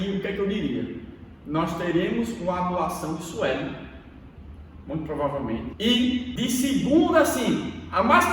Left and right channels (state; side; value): identical; both; correlation 1.00